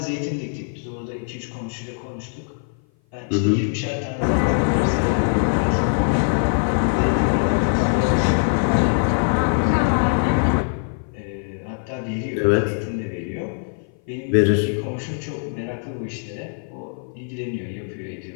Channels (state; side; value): silent; right; 57 dB below the other